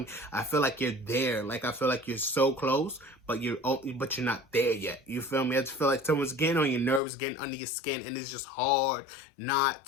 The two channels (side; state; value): right; drops out; at 7.0 s